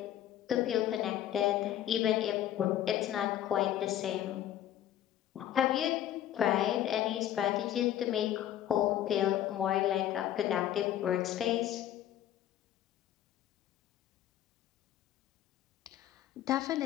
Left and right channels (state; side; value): quieter; right; 11.8 dB